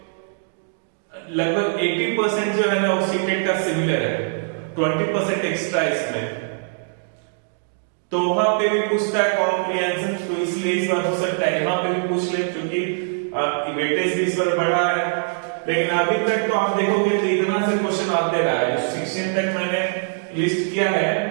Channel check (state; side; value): silent; left; digital silence